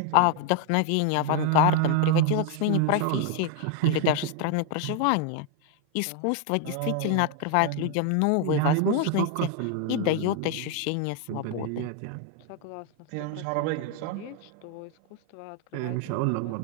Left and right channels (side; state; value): both; different; correlation 0.01